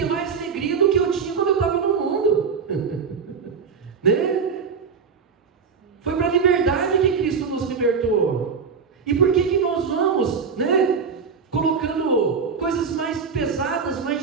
mais alegria do que eu tinha quando eu estava no mundo, né? Foi para a liberdade que Cristo nos libertou. E por que nós vamos, né, colocando coisas mais pesadas,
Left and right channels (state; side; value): quieter; left; 5.8 dB